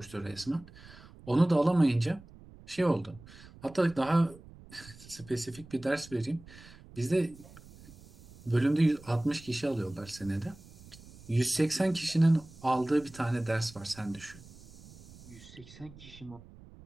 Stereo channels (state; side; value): noise; right; rumble, 20 dB below the sound